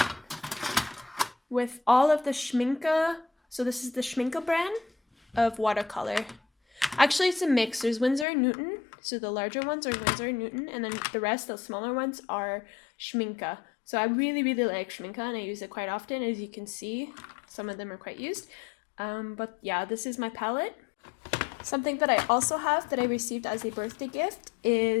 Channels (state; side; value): drops out; right; at 8.2 s